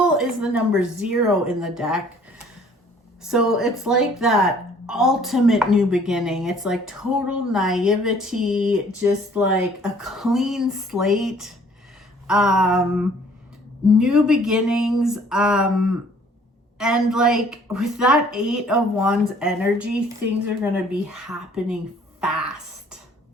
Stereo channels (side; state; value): both; normal; correlation 0.57